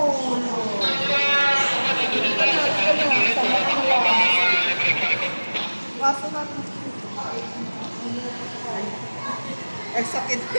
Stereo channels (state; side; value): inverted; both; correlation -1.00